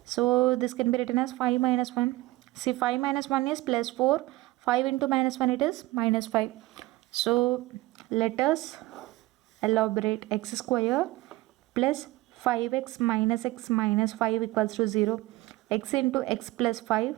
So this can be written as 5 minus 1. See, 5 minus 1 is plus 4. 5 into minus 1, it is minus 5. So let us elaborate. X square plus 5x minus 5 equals to 0. X into x plus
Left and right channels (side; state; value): left; quieter; 19.1 dB